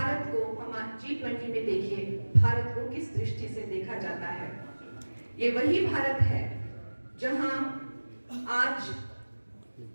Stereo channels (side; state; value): both; inverted; correlation -1.00